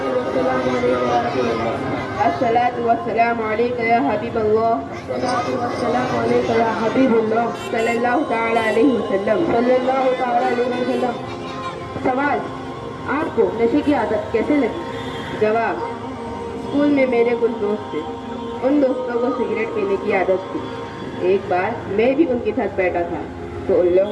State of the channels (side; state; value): both; identical; correlation 1.00